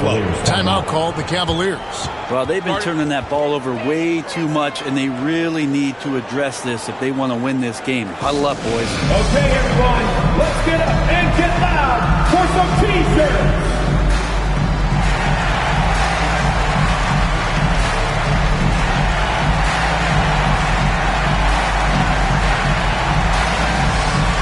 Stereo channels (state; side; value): identical; both; correlation 1.00